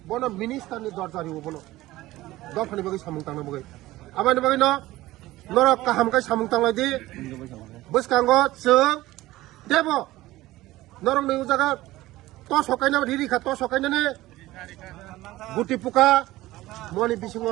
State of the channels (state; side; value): quieter; left; 17.3 dB